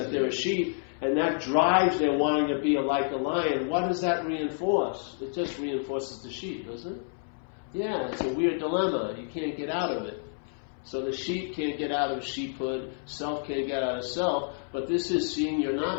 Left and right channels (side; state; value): right; silent; 59 dB below the other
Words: they're a sheep, and that drives their wanting to be like a lion, what does that reinforce? It just reinforces the sheep, doesn't it? Yeah, it's a weird dilemma. You can't get out of it. So the sheep can't get out of sheephood, self can't get out of self, but this is seeing you're not